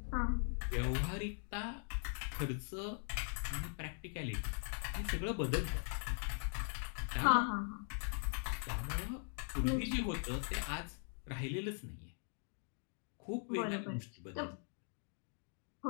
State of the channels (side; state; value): right; silent; 50 dB below the other